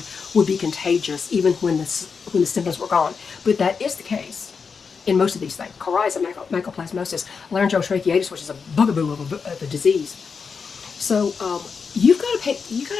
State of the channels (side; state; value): right; quieter; 5.6 dB